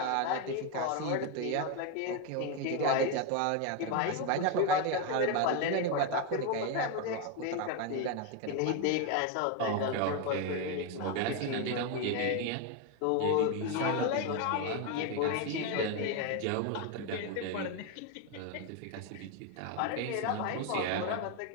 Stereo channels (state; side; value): different; both; correlation 0.02